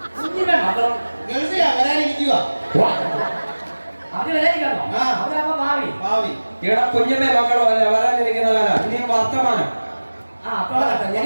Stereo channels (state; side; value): inverted; both; correlation -1.00